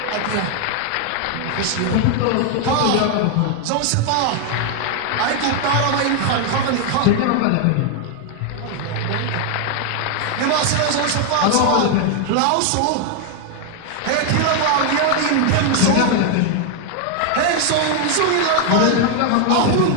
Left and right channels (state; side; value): different; both; correlation 0.00